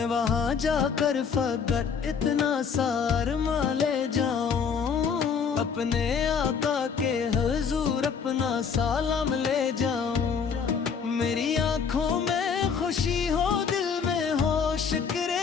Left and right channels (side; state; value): right; quieter; 6.3 dB